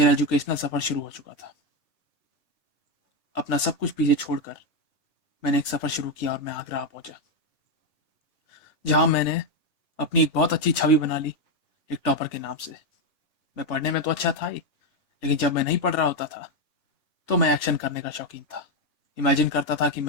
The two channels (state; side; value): late; right; 3.4 ms